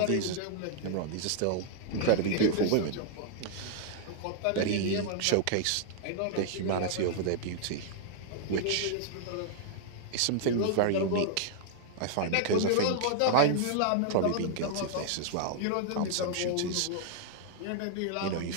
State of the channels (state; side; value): different; both; correlation -0.01